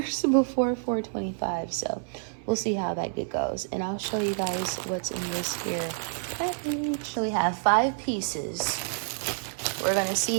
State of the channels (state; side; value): silent; left; 59 dB below the other